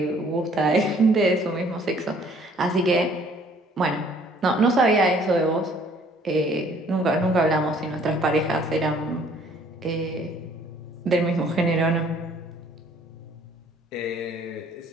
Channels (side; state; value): both; normal; correlation 0.59